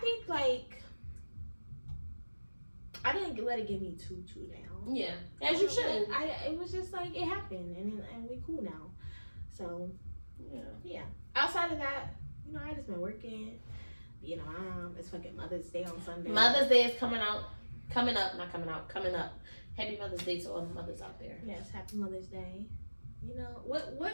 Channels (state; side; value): inverted; both; correlation -1.00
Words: think like I didn't let it get me too down. Yeah, as you should. It was just like it happened, and we cool now. So yeah. Outside of that, you know, I just been working. Being a mom. It's fucking Mother's Day on Sunday. Mother's Day is coming up. Happy Mother's Day to all the mothers out there. Yes, happy Mother's Day. You know,